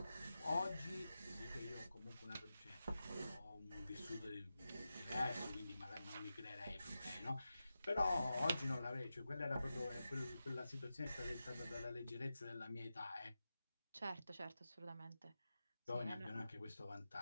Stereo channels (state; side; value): inverted; both; correlation -0.92